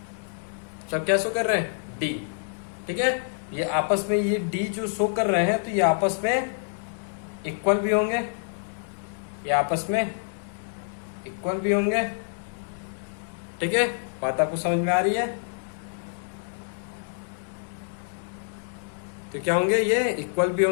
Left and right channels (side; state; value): right; silent; 60 dB below the other